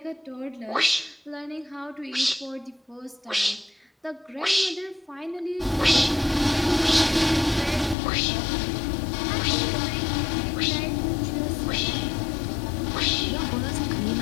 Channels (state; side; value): drops out; right; at 8.0 s